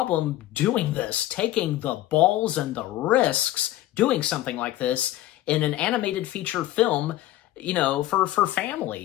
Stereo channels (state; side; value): quieter; right; 14.7 dB